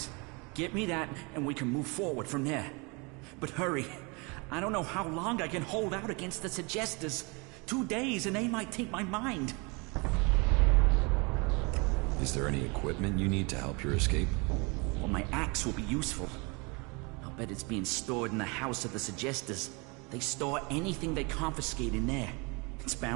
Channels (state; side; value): quieter; left; 29.5 dB